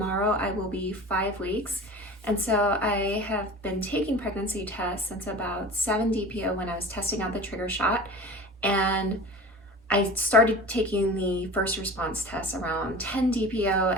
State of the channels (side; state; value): both; normal; correlation 0.37